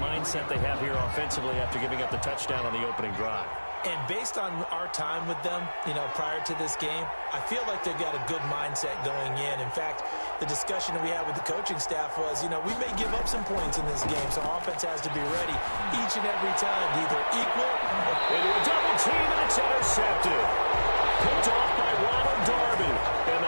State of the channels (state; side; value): inverted; both; correlation -1.00